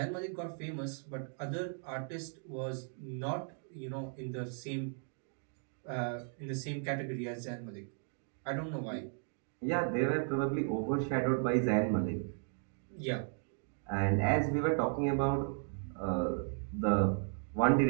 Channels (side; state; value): left; silent; 54 dB below the other